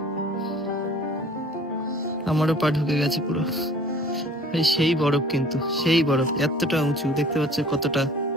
আমারও পা ঢুকে গেছে পুরো। সেই বরফ, কিন্তু সেই বরফ এতটা উঁচু, দেখতে পাচ্ছ কতটা,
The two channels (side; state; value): both; normal; correlation 0.51